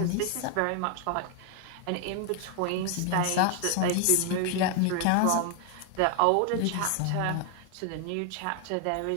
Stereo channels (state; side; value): different; both; correlation 0.00